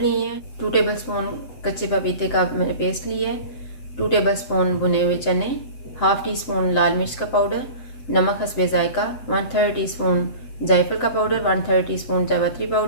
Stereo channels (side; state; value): right; late; 7.6 ms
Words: हैं, 2 टेबल स्पून कच्चे पपीते का मैंने पेस्ट लिया है, 2 टेबल स्पून भुने हुए चने, हाफ़ टी स्पून लाल मिर्च का पाउडर, नमक हस्बे ज़ायका, 1/3 टीस्पून जायफल का पाउडर, 1/3 टीस्पून जावित्री